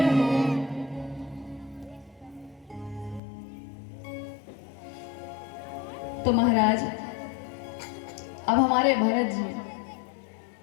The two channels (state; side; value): drops out; right; at 3.2 s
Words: हो। तो महाराज अब हमारे भरत